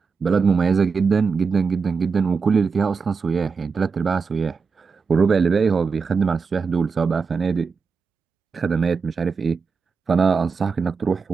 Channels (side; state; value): left; quieter; 5.2 dB